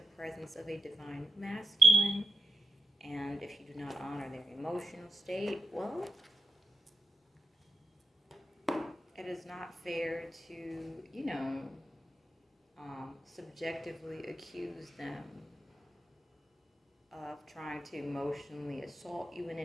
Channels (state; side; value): normal; both; correlation 0.84